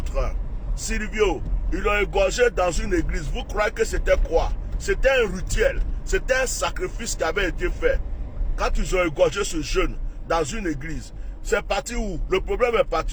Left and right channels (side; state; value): both; identical; correlation 1.00